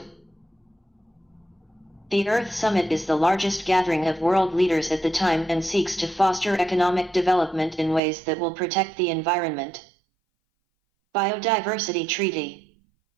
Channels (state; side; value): drops out; left; at 8.0 s